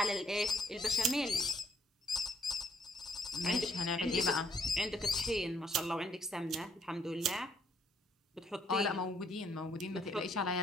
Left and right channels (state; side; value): normal; both; correlation 0.67